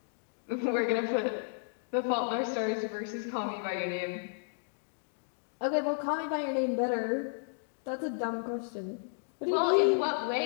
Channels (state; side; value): silent; right; digital silence